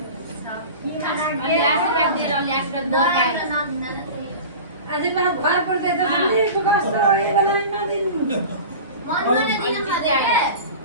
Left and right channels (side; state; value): both; inverted; correlation -0.34